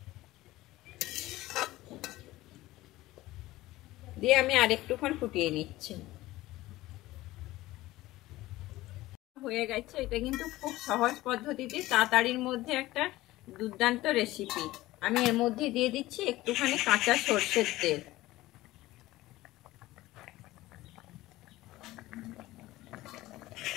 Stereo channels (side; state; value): right; quieter; 17.5 dB